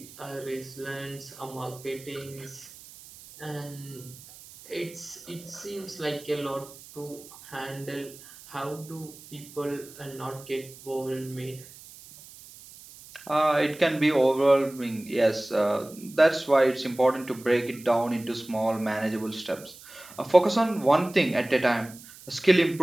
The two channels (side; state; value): right; noise; hiss, 19 dB below the sound